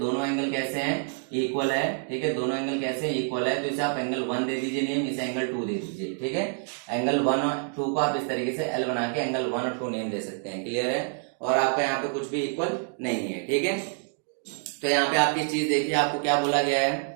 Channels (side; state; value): left; silent; 60 dB below the other